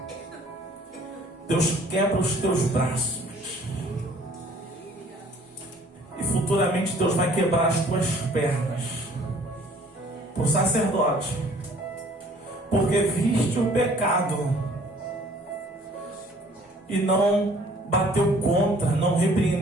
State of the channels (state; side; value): normal; both; correlation 0.55